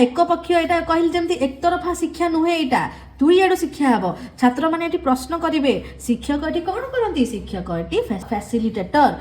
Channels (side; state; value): both; identical; correlation 1.00